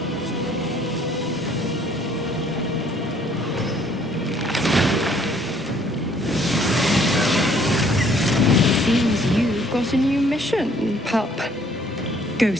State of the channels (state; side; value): normal; both; correlation 0.61